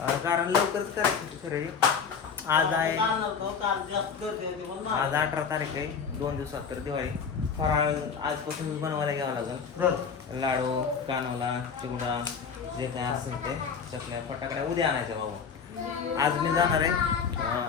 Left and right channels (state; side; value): quieter; right; 6.2 dB